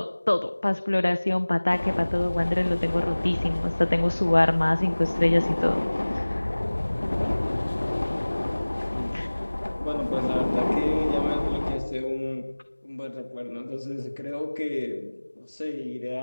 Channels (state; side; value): inverted; both; correlation -1.00